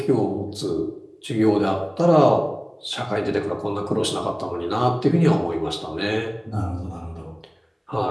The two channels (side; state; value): both; identical; correlation 1.00